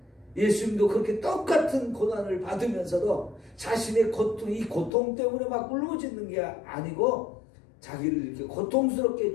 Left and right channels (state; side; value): drops out; right; at 4.9 s